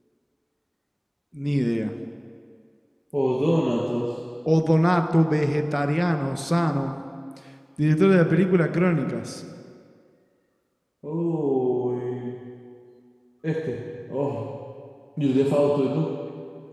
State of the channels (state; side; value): identical; both; correlation 1.00